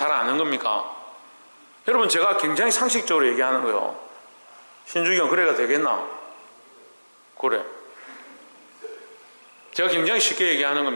아는 겁니까? 여러분, 제가 굉장히 상식적으로 얘기하는 거예요. 신주기 형 그래가 되겠나? 그래. 제가 굉장히 쉽게 얘기하는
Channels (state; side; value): inverted; both; correlation -1.00